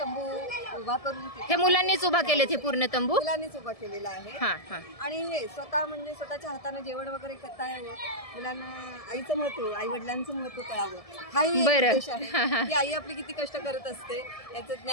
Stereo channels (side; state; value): right; late; 1.7 ms